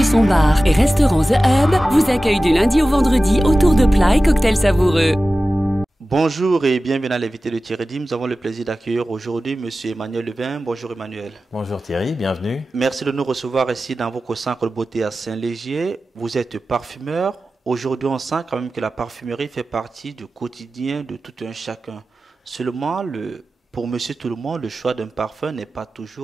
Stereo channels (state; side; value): normal; both; correlation 0.95